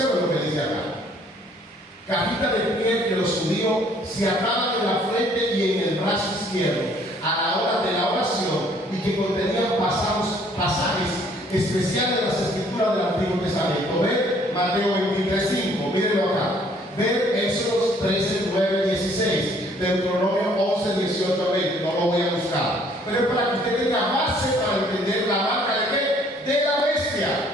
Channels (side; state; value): both; normal; correlation 0.61